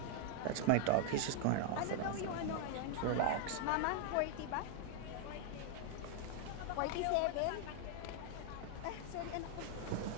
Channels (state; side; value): different; both; correlation 0.00